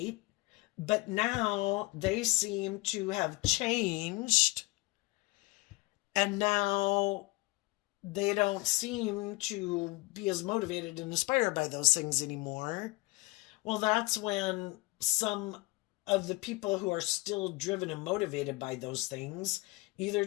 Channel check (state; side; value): quieter; right; 23.1 dB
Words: But now they seem to have changed, and now they don't seem to be as motivated and inspired by those things anymore. Well, that's when some of the people who are still driven and motivated by those things, either